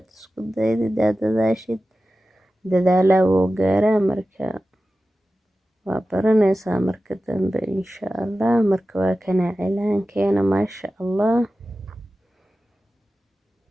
isku daydid aad dadaashid dadaalaa wuu gaaraa marka waa baranaysaa marka dambe insha allah marka waa kana cilaankeena maasha allah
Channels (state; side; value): normal; both; correlation 0.94